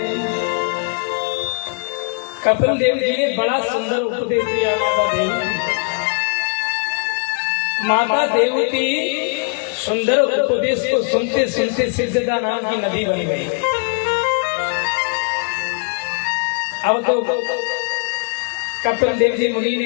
कपिल देव जी ने बड़ा सुंदर उपदेश दिया माता देवती। माता देवती सुंदर उपदेश को सुनते सुनते सिद्धता नाम की नदी बन गई। अब तो कपिल देव जी मुनि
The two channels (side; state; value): right; quieter; 38.9 dB